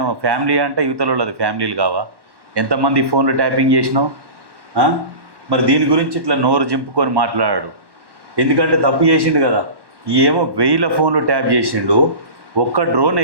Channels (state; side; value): late; left; 1.1 ms